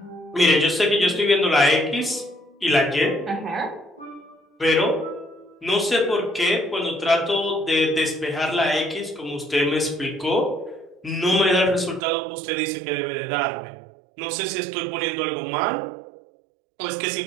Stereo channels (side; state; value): left; drops out; at 12.0 s